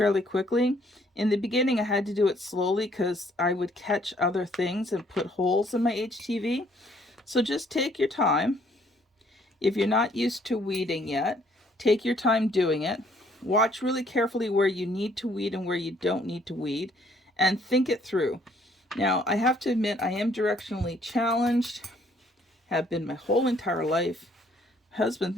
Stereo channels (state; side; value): normal; both; correlation 0.64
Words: quickly, in the beginning I had to do it slowly because I would catch other things and put holes in my HTV. So just take your time. If you're not used to weeding yet, take your time doing it. Watch really carefully where you need to weed and where you don't need to weed, and think it through. Now, I have to admit, I am directionally challenged, have been my whole entire life. My husband